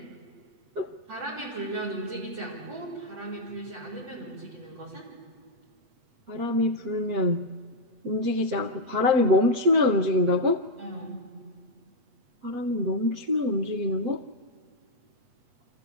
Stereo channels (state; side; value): late; left; 8.2 ms